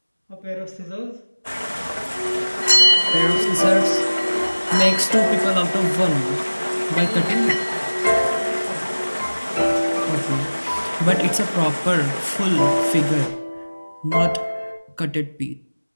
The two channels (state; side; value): inverted; both; correlation -1.00